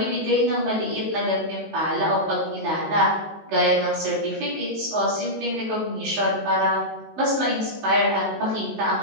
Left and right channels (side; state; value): left; late; 19 ms